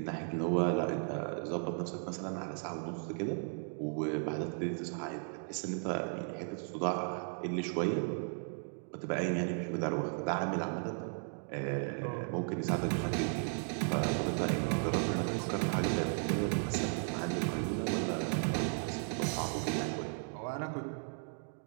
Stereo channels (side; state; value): left; silent; 54 dB below the other